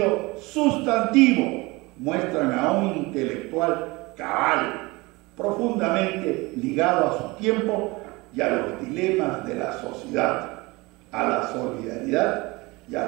sustantivo muestran a un intelectual cabal, profundamente ligado a su tiempo y a los dilemas de la sociedad, a la solidaridad y a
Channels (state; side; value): quieter; left; 23.4 dB